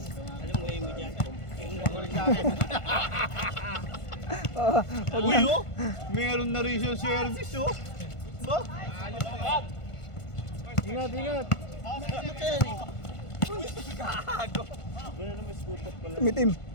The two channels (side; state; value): right; late; 1.5 ms